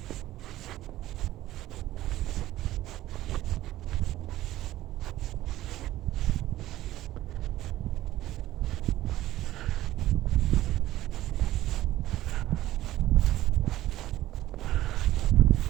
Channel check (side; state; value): left; quieter; 14.9 dB